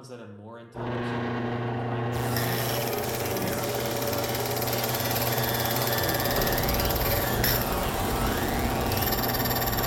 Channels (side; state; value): both; identical; correlation 1.00